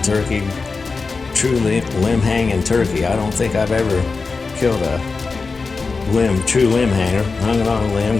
turkey, true limb hanging turkey. I don't think I've ever killed a true limb hanger. Hung it on a limb,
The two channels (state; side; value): quieter; right; 4.3 dB